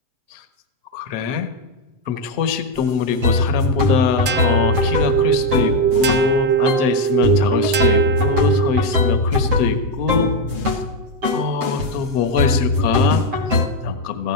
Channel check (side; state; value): left; late; 8.1 ms